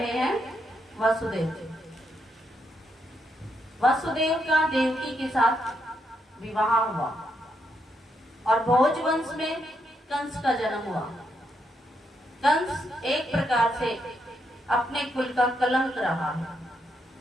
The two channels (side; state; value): both; normal; correlation 0.79